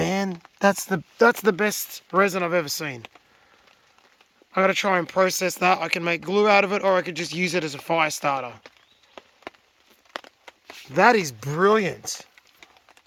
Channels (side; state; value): both; identical; correlation 1.00